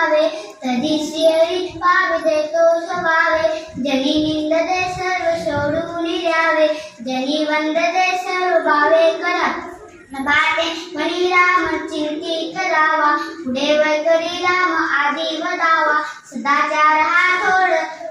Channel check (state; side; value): identical; both; correlation 1.00